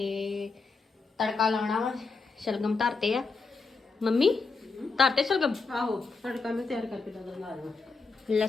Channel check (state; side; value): quieter; right; 4.3 dB